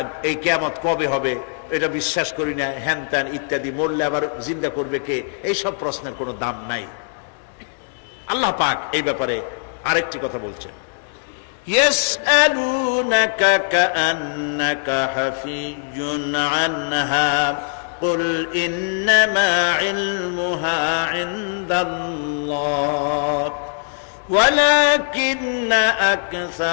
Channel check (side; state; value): right; silent; digital silence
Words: এই কিয়ামত কবে হবে, এটা বিশ্বাস করি না, হ্যান ত্যান ইত্যাদি, মরলে আবার জিন্দা করবে কে, এইসব প্রশ্নের কোনো দাম নাই। আল্লাহ পাক এই ব্যাপারে আরেকটি কথা বলছেন, ইয়াসআলুনাকা কাআন্নাকা হাফিজুন আনহা কুল ইন্নামা ইলমুহা ইনদাল্লাহ ওয়ালাকিন্না